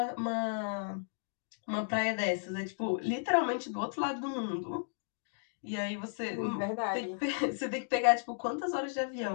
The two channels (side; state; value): right; silent; digital silence